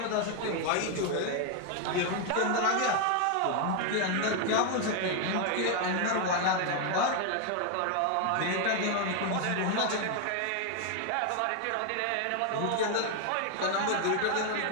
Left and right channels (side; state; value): both; different; correlation 0.01